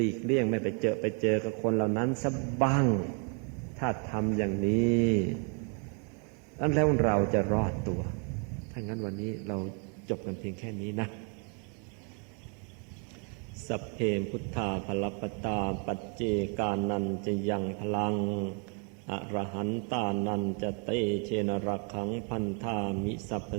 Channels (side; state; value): left; quieter; 38.1 dB